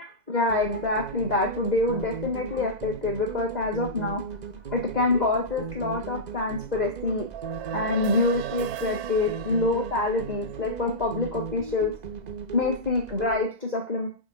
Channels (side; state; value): left; late; 2.0 ms